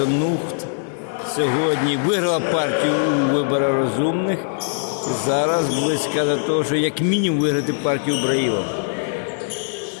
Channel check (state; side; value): silent; right; digital silence